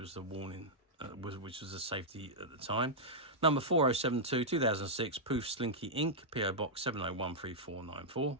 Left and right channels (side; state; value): both; normal; correlation -0.07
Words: the warning. Which was a safety at the time. Number 4072 2006, Poof Slinky Inc, PO Box 7013494,